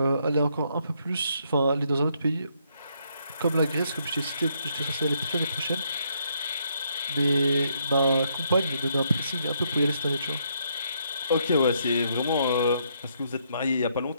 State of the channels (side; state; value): both; inverted; correlation -0.73